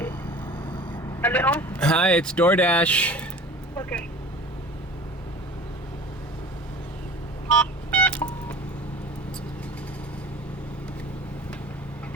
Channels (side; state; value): both; normal; correlation 0.41